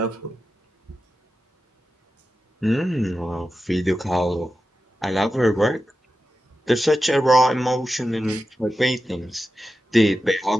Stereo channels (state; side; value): normal; both; correlation 0.92